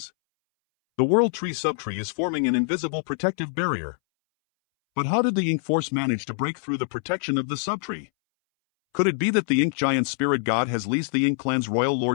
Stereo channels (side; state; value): right; silent; 62 dB below the other